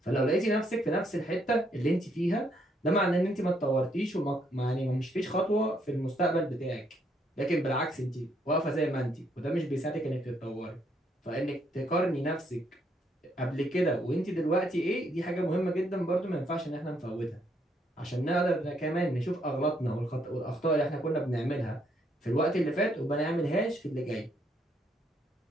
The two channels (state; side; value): normal; both; correlation 0.72